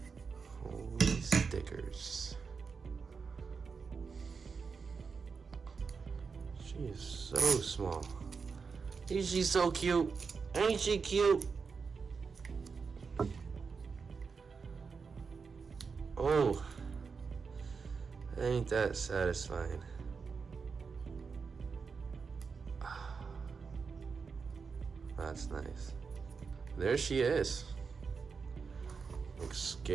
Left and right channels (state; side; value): quieter; left; 5.3 dB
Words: Holy stickers. She is so small. Ain't she so cute? Ain't she cute? Oh, ain't that satisfying? That's nice. There she is. Like